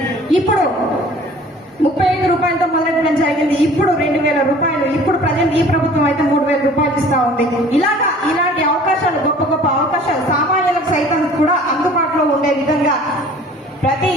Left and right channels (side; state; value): both; normal; correlation 0.49